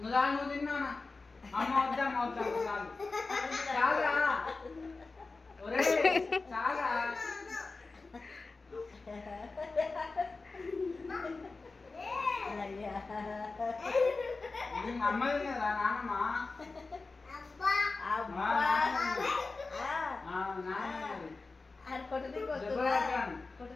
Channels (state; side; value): quieter; right; 3.8 dB